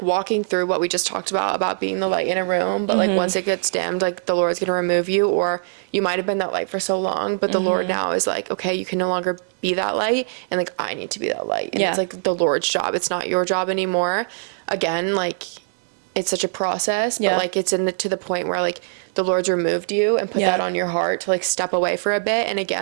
walking through what we just talked about being the light in a room, but like once it gets dimmed, like the Lord's going to remove you, or you might have been that light for so long, but the Lord now is like, okay, you can no longer be that light, and like I need to be that light, and it's like the Lord's job. It's not your job anymore. Again, like it's such a process, but like it's to the point where like the Lord's removed you and put that on your heart to like step away for a bit, and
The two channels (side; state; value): left; silent; digital silence